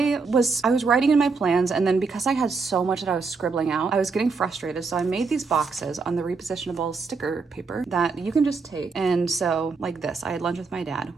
was writing in my plans, and then because I had so much that I was scribbling out, I was getting frustrated. So I made these boxes on the repositionable sticker paper that you can just take. And so like this, I had lunch with my dad.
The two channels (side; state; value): left; quieter; 4.5 dB